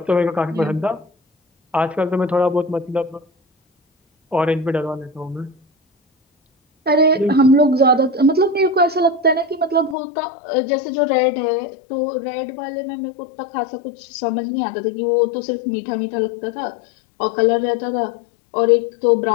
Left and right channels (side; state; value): right; drops out; at 10.0 s